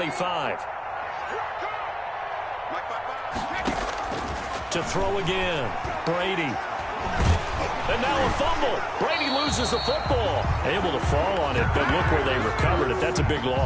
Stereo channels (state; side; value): identical; both; correlation 1.00